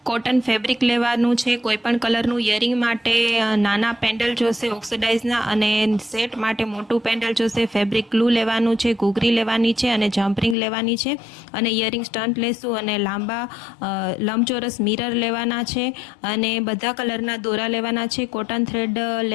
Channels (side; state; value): right; drops out; at 10.6 s